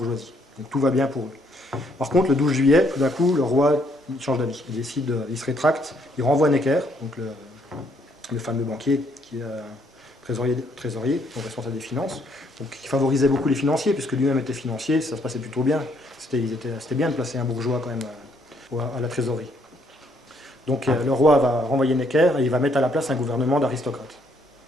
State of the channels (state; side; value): normal; both; correlation 0.69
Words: Donc tout va bien pour eux. Par contre, le 12 juillet, tout d'un coup, le roi change d'avis, il se rétracte, il renvoie Necker, donc le fameux banquier qui est trésorier, donc responsable des finances, donc qui favorisait beaucoup les financiers, puisque lui-même était financier, ça se passait plutôt bien. C'était bien de placer un bourgeois quand même à la trésorerie. Donc le roi va renvoyer Necker et il va mettre à la place un gouvernement d'aristocrates,